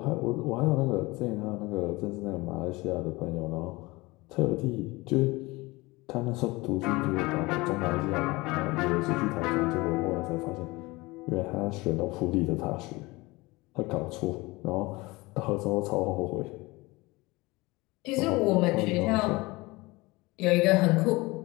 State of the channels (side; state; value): right; quieter; 22.6 dB